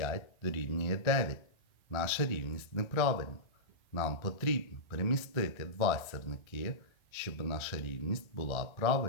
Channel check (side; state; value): right; late; 1.3 ms